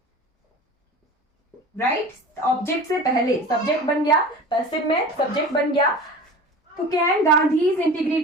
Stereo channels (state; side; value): normal; both; correlation 0.37